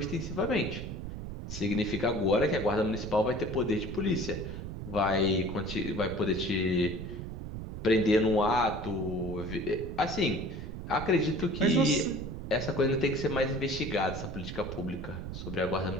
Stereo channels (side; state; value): right; noise; rumble, 7 dB below the sound